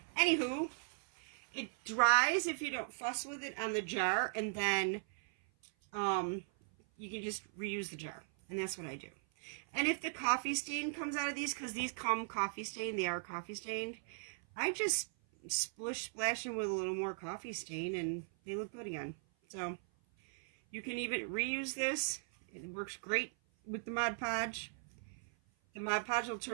Anywho, it dries if you don't fuss with it on the jar, and then you can just reuse the jar, and that's what I do. And if the coffee stain comes out of these, because these come coffee stained, they are coffee stained, I just splash them with a little more coffee stain, and they look good again. So you can even reuse this. It works great with the Mod Podge. The Mod Podge will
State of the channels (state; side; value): silent; left; 52 dB below the other